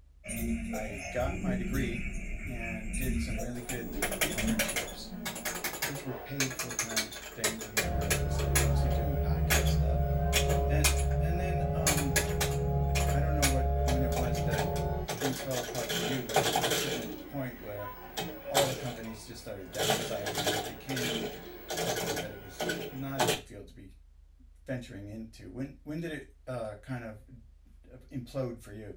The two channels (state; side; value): identical; both; correlation 1.00